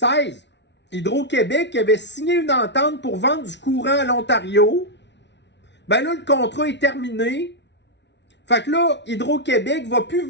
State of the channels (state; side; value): late; right; 0.51 ms